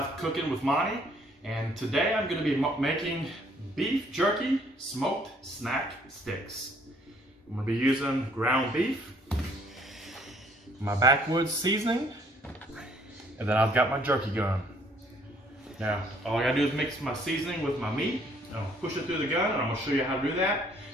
Cooking with Monty. And today I'm going to be making beef jerky smoked snack sticks. I'm going to be using ground beef, my backwoods seasoning, and then I've got my jerky gun. Now, all I got to do is mix my seasoning with my meat. I'll push it through the gun, and I'm going to show you how to do that.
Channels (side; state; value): both; normal; correlation 0.62